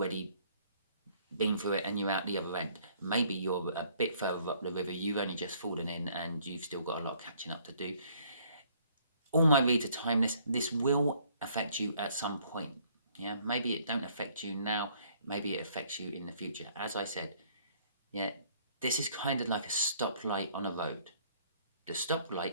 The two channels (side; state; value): both; inverted; correlation -0.62